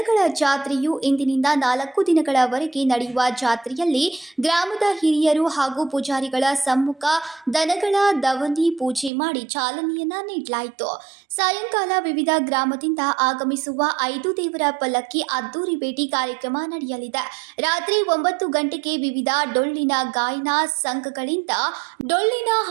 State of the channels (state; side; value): drops out; left; at 9.1 s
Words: ಜಾತ್ರೆಯು ಇಂದಿನಿಂದ 4 ದಿನಗಳವರೆಗೆ ನಡೆಯುವ ಜಾತ್ರೆಯಲ್ಲಿ ಗ್ರಾಮದ ಹಿರಿಯರು ಹಾಗೂ ಪೂಜಾರಿಗಳ ಸಮ್ಮುಖ ದನಗಳ ದವನಿ ಪೂಜೆ ಮಾಡಿ ಚಾಲನೆಯನ್ನ ನೀಡಲಾಯಿತು. ಸಾಯಂಕಾಲ ವಿವಿಧ ಗ್ರಾಮದಿಂದ ಆಗಮಿಸುವ 5 ದೇವರ ಪಲ್ಲಕ್ಕಿ ಅದ್ದೂರಿ ಭೇಟಿ ಕಾರ್ಯಕ್ರಮ ನಡೆಯಲಿದೆ. ರಾತ್ರಿ 9 ಗಂಟೆಗೆ ವಿವಿಧ ಡೊಳ್ಳಿನ ಗಾಯನ ಸಂಘಗಳಿಂದ ಡೊಳ್ಳಿನ